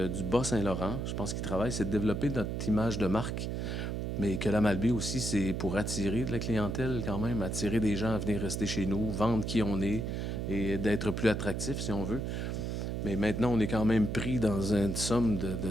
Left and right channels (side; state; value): right; noise; hum, 2 dB below the sound